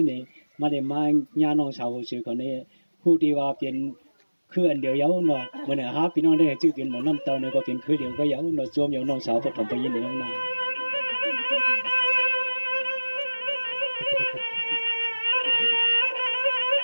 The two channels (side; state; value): both; inverted; correlation -1.00